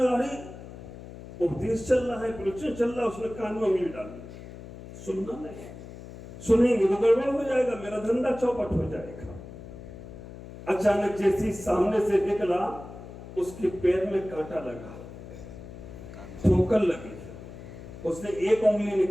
अरे उपदेश चल रहा है, प्रवचन चल रहा है, उसने कान में उंगली डाली। सुनना नहीं, सुनेंगे तो गड़बड़ हो जाएगा, मेरा धंधा चौपट हो जाएगा। अचानक जैसे ही सामने से निकला, उसके पैर में कांटा लगा, ठोकर लगी। उसने एक उंगली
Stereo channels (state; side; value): noise; left; hum, 14 dB below the sound